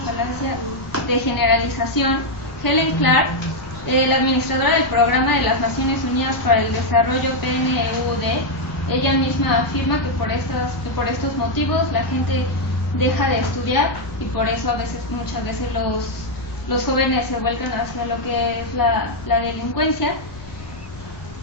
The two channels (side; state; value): left; noise; rumble, 19 dB below the sound